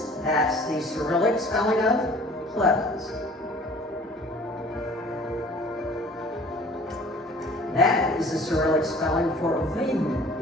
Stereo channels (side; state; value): both; normal; correlation 0.48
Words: That's the Cyrillic spelling of Plevens. That is the Cyrillic spelling for Viden,